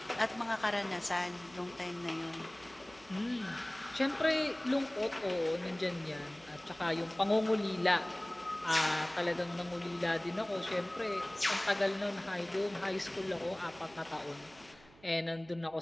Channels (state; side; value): noise; right; hum, 25 dB below the sound